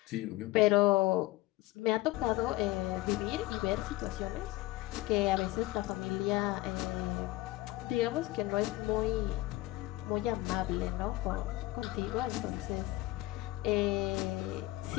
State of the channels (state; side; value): quieter; right; 17.9 dB